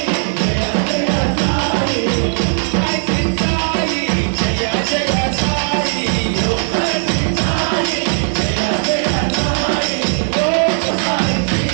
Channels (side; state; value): left; silent; 62 dB below the other